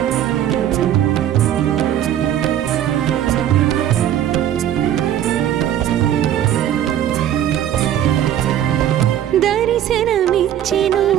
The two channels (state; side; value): quieter; left; 11.0 dB